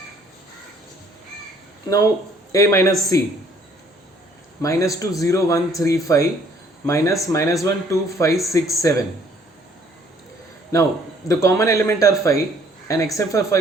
Now A minus C, minus 2, 0, 1, 3, 5 minus 1, 2, 5, 6, 7. Now the common element are 5 and except for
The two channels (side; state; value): both; normal; correlation 0.61